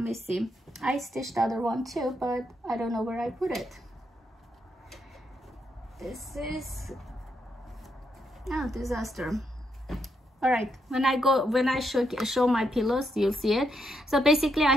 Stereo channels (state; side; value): normal; both; correlation 0.79